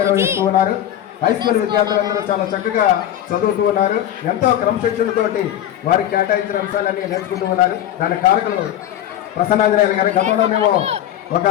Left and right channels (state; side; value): quieter; right; 11.4 dB